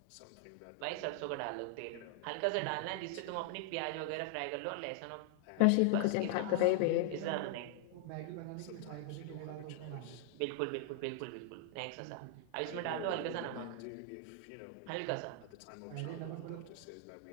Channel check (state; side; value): different; both; correlation 0.00